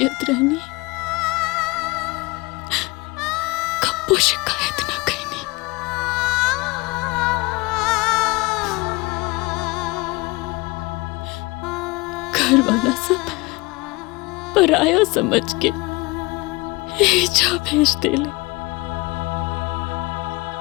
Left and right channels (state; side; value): quieter; right; 24.0 dB